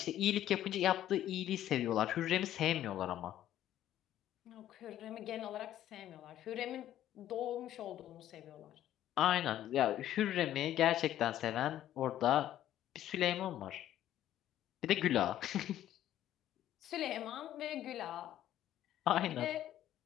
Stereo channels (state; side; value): quieter; right; 12.2 dB